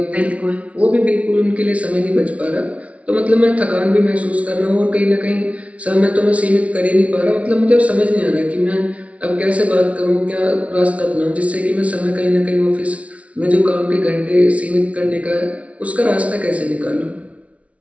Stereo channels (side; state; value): left; late; 0.064 ms